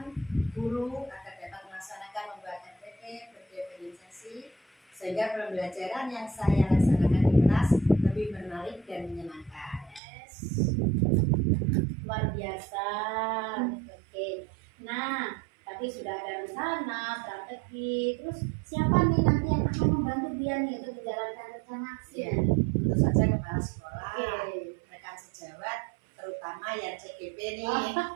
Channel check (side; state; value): left; drops out; at 10.0 s